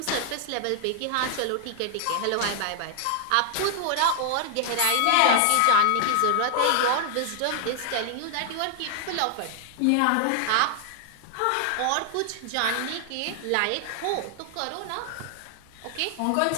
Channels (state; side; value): different; both; correlation 0.00